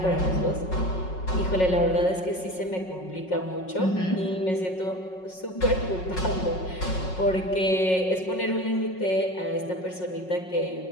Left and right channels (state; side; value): late; right; 5.4 ms